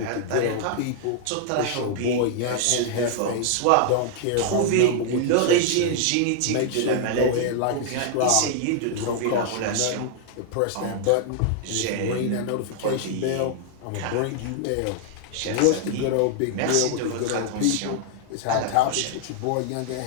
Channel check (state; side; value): different; both; correlation 0.00